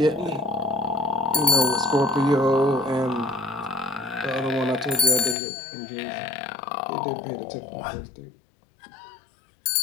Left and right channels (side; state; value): right; drops out; at 5.4 s